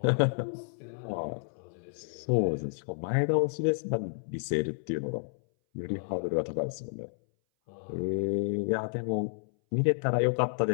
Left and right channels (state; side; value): silent; right; 57 dB below the other